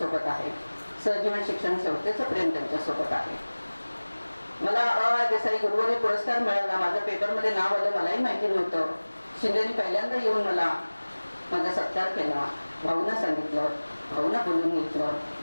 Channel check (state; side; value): inverted; both; correlation -1.00